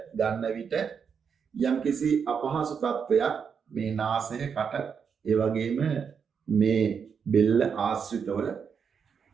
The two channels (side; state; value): left; quieter; 6.6 dB